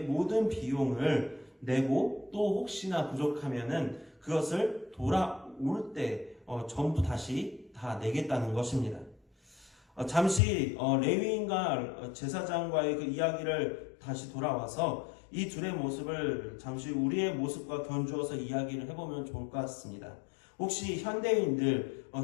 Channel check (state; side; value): drops out; right; at 10.4 s